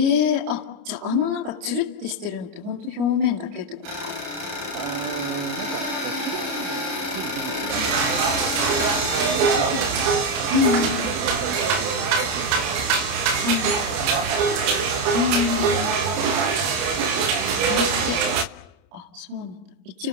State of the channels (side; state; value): left; late; 29 ms